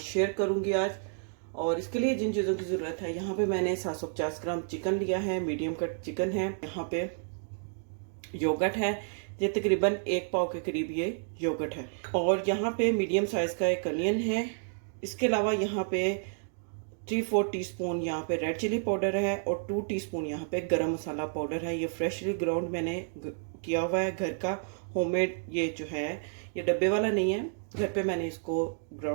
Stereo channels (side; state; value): left; silent; digital silence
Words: शेयर करूँगी आज। और इसके लिए जिन चीज़ों की ज़रूरत है, यहाँ पे मैंने 750 ग्राम चिकन लिया है, मीडियम कट चिकन है। यहाँ पे योगर्ट है, ये तकरीबन 1 पाव के करीब ये योगर्ट है। और यहाँ पे मीडियम साइज़ का एक अनियन है। इसके अलावा यहाँ पे 3-4 टीस्पून यहाँ पे रेड चिली पाउडर है और 2 टीस्पून यहाँ पे गरम मसाला पाउडर है। ये फ्रेशली ग्राउंड मैंने किया हुआ है, घर का होममेड। ये जो है ये डब्बे वाला नहीं है, घर पे मैंने इसको